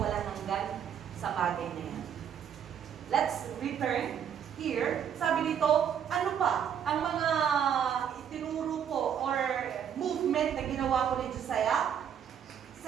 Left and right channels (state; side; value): quieter; left; 8.6 dB